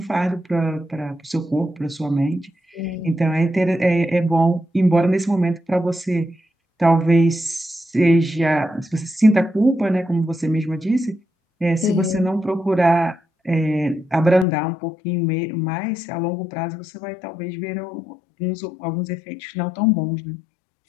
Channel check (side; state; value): right; drops out; at 14.5 s